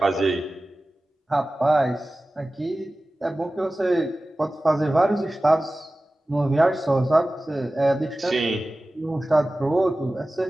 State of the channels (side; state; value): both; normal; correlation 0.96